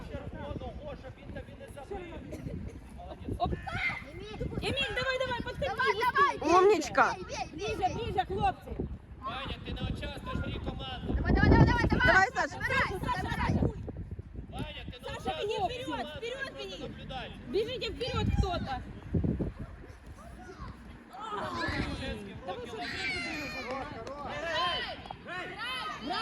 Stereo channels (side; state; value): both; identical; correlation 1.00